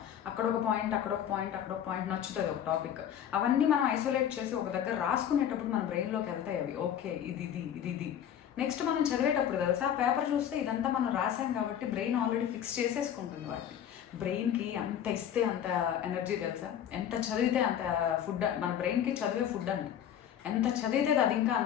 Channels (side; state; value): right; quieter; 9.7 dB